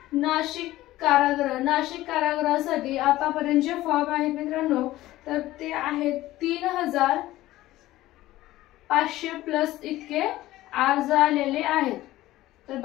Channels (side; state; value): right; quieter; 16.2 dB